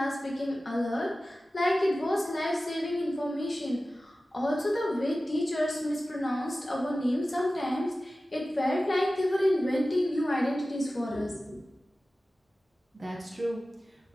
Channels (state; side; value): normal; both; correlation 0.96